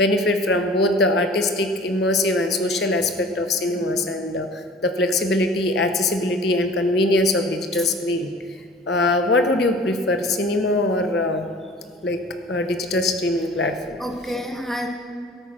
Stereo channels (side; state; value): both; normal; correlation 0.45